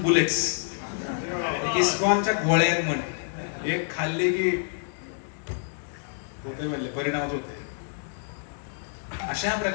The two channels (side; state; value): right; silent; digital silence